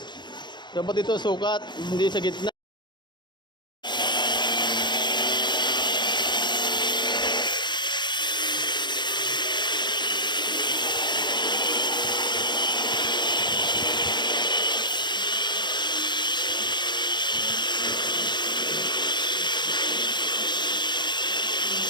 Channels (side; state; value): right; late; 0.22 ms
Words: Dapat dito sukat, hindi sa gitna.